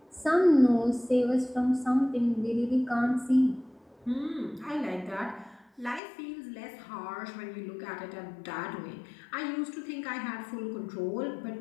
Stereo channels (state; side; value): drops out; right; at 6.0 s